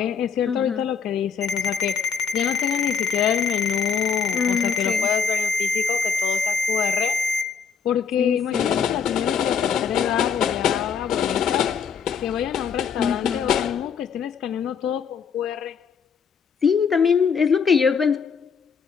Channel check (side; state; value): right; quieter; 6.4 dB